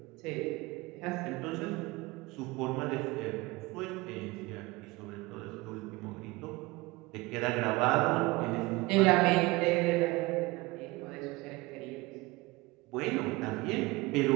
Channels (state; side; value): quieter; left; 22.5 dB